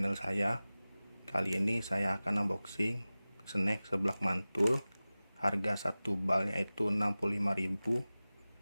saya. Kali ini saya akan unboxing snack seblak mantul. Harga satu balnya itu 65.000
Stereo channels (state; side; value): inverted; both; correlation -0.97